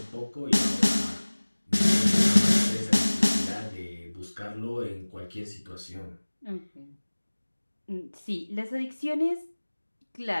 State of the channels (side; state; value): both; inverted; correlation -1.00